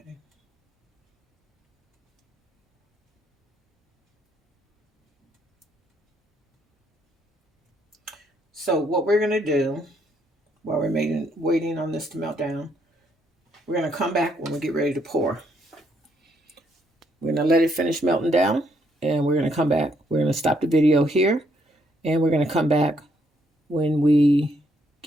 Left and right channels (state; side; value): normal; both; correlation 0.72